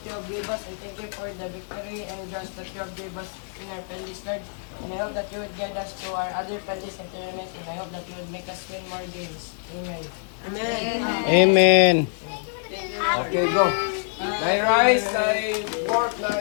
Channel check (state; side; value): silent; right; 61 dB below the other